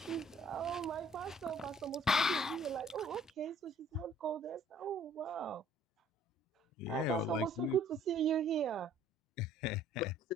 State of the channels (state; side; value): normal; both; correlation 0.57